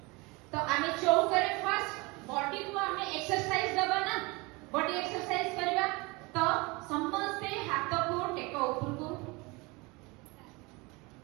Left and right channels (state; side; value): quieter; left; 25.6 dB